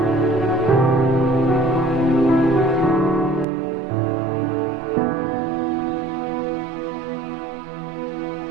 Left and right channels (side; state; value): left; drops out; at 3.5 s